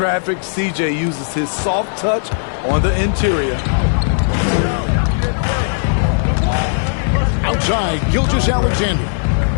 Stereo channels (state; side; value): silent; right; 55 dB below the other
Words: C.J. uses his soft touch on the interior. Outside, Gilgeous-Alexander.